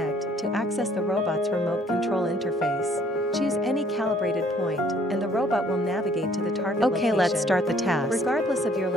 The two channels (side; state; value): both; normal; correlation 0.61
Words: to access the robot's remote control interface. Choose any calibrated point, and the robot will navigate to the target location. Okay, let's start the task. Regardless of your